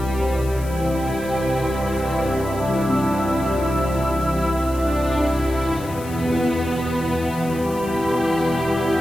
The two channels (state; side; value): noise; left; hiss, 18 dB below the sound